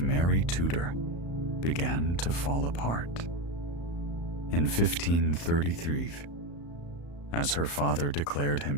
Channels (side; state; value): right; late; 35 ms